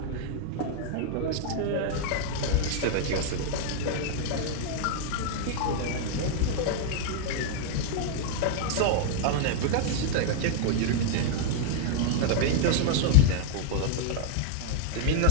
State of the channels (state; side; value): different; both; correlation -0.01